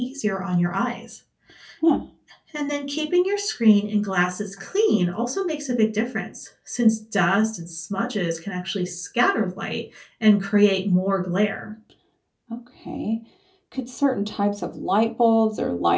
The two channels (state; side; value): identical; both; correlation 1.00